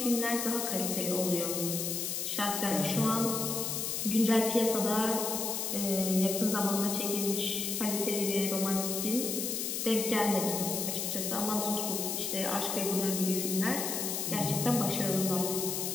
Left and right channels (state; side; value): noise; left; hiss, 2 dB below the sound